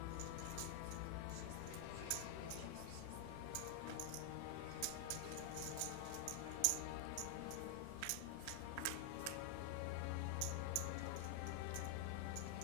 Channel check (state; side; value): different; both; correlation 0.00